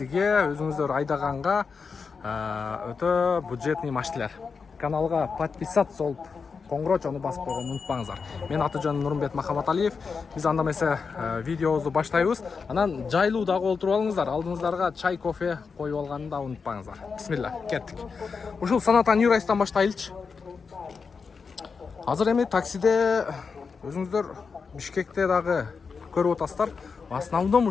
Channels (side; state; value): right; quieter; 5.3 dB